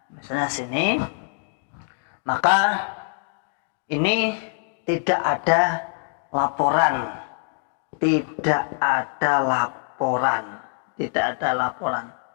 misalnya sini, maka ini tidak ada laporan,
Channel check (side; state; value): right; silent; digital silence